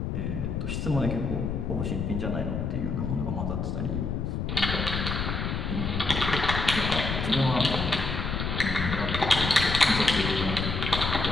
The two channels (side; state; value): left; noise; rumble, 2 dB below the sound